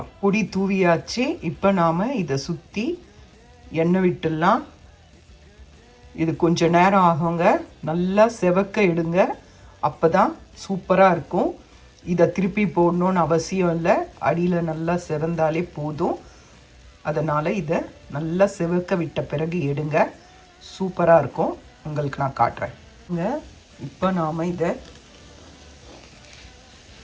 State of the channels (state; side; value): identical; both; correlation 1.00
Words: பொடி தூவியாச்சு. இப்போ நாம் இதை சுற்றி எண்ணெய் விட்டுடலாம். இது கொஞ்சம் நேரம் ஆகுங்க. நல்லா செவக்க எடுங்க, அப்போ தான் சூப்பராக இருக்கும். இதை திருப்பி போடணுன்னு அவசியம் இல்லை, அடியில் நல்லா செவந்தாலே போதும். அதனால் இதை நல்லா செவக்க விட்ட பிறகு எடுங்க, சூப்பராக இருக்கும். உங்களுக்கு நான் காட்டுறேன். இப்போ நாம் இதை